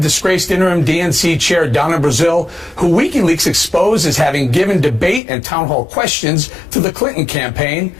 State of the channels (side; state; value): right; drops out; at 5.2 s